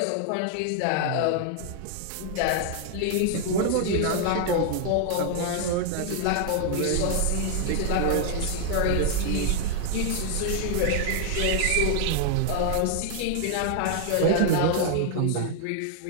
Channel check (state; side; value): different; both; correlation 0.00